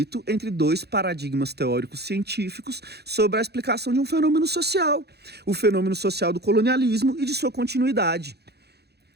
entre dois paradigmas teóricos científicos sobre a explicação de um fenômeno social. O fenômeno social do colonialismo e de sua continuidade,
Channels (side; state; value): left; late; 0.48 ms